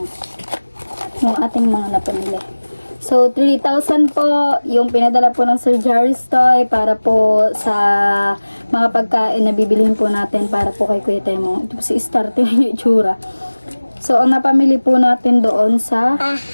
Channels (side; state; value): both; inverted; correlation -1.00